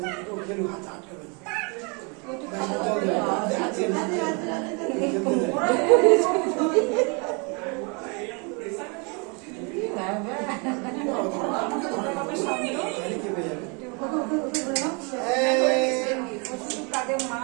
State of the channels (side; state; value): left; quieter; 33.2 dB